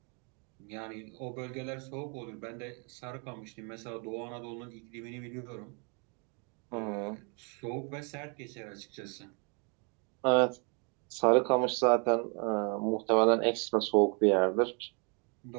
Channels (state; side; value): quieter; left; 35.6 dB